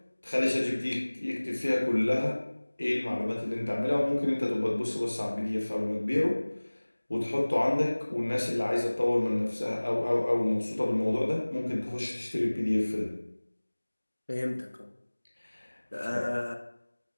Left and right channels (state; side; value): inverted; both; correlation -1.00